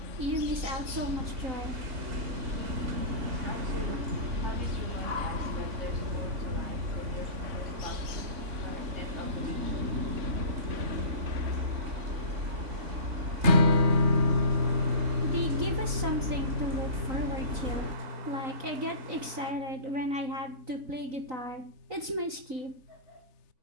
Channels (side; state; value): left; late; 3.9 ms